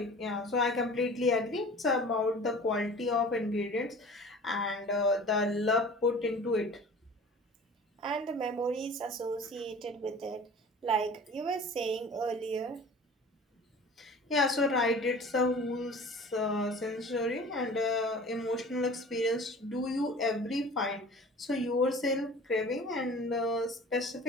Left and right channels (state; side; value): normal; both; correlation 0.43